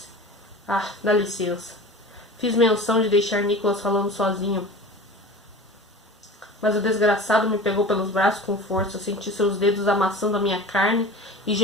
Ah, dá licença. Fiz menção de deixar Nicholas falando sozinho. Mas o desgraçado me pegou pelos braços com força. Senti seus dedos amassando a minha carne e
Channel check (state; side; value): normal; both; correlation 0.37